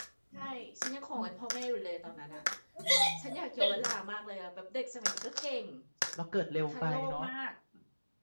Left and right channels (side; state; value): both; inverted; correlation -1.00